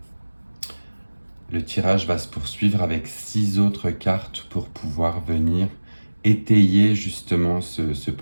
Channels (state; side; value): inverted; both; correlation -1.00